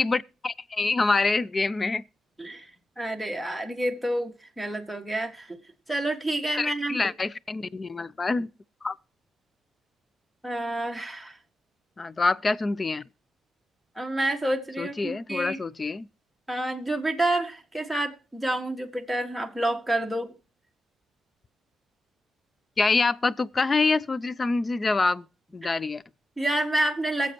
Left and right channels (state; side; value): normal; both; correlation 0.92